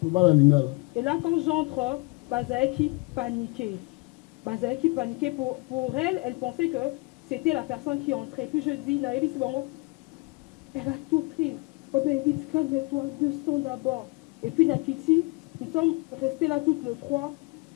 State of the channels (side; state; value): right; quieter; 27.0 dB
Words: Bazaeki paniquait. Pour elle, elle pensait que c'était la personne qui entrait. Puis je dis, elle a tout pris. Oh ben dit, calme-toi, descends d'abord. Et puis Nakiti, Nous sommes restés là toutes les trois